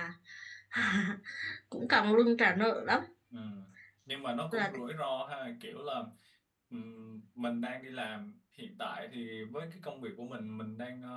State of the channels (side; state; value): both; identical; correlation 1.00